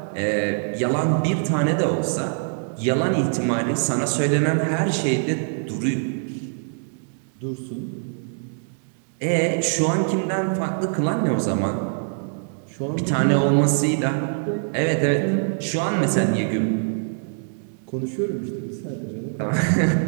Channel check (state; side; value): silent; left; digital silence